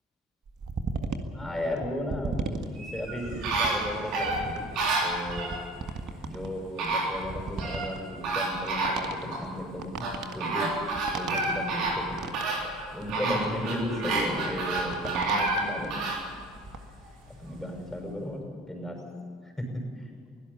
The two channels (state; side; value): normal; both; correlation 0.42